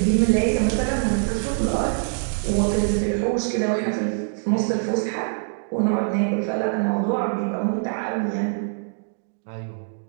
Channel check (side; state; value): left; silent; digital silence